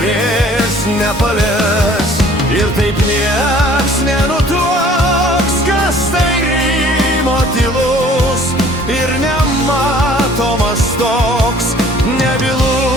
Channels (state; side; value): normal; both; correlation 0.54